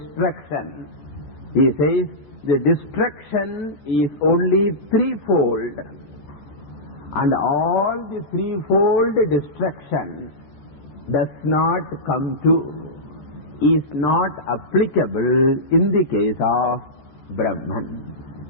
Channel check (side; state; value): right; late; 14 ms